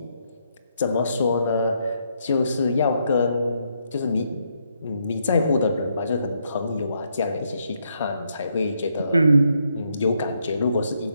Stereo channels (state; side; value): inverted; both; correlation -0.76